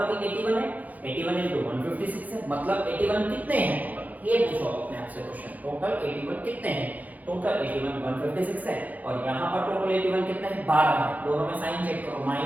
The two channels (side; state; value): left; late; 0.079 ms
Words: भी 81 है, 81 into 156 है, मतलब 81 कितने हैं टोटल, ये पूछो अपने आप से क्वेश्चन, टोटल 81 कितने हैं, टोटल 81 156 है, और यहाँ पर टोटल 81 कितने हैं, 12 है, दोनों में साइन चेक करो,